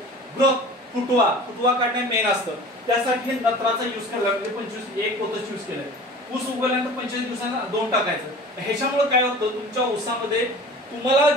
ग्रोथ, फुटवा काढणे मेन असतं. त्यासाठी नत्राचा युज करायला, म्हणजे 25 एक पोतच युज केलंय. ऊस उगवल्यानंतर 25 दिवसांना 2 टाकायचं. ह्याच्यामुळे काय होतं, तुमच्या ऊसामध्ये तुम्हाला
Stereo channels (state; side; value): normal; both; correlation 0.41